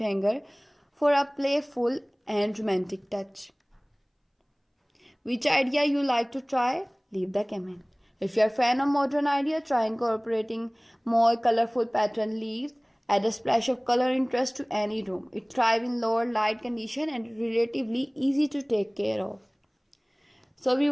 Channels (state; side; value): identical; both; correlation 1.00